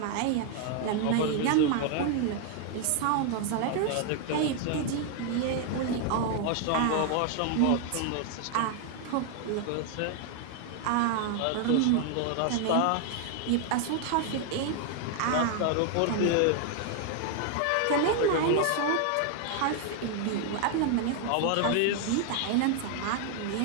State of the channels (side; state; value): both; different; correlation 0.00